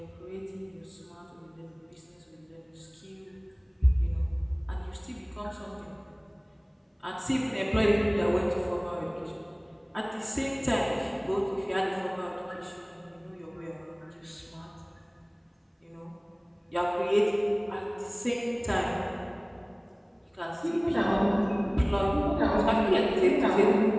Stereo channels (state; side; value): identical; both; correlation 1.00